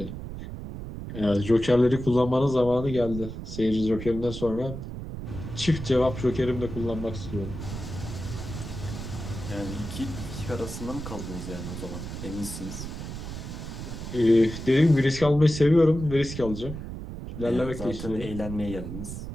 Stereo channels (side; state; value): right; noise; rumble, 8 dB below the sound